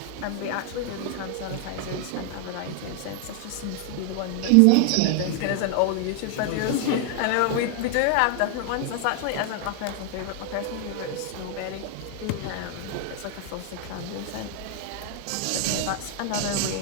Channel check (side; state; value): both; different; correlation 0.00